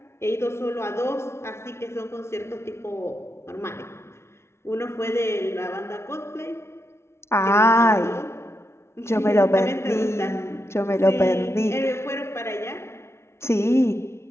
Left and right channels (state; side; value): late; right; 0.13 ms